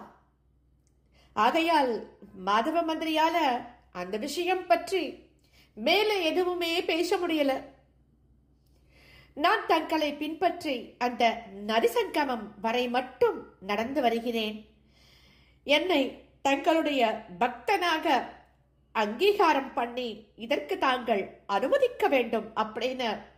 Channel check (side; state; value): both; identical; correlation 1.00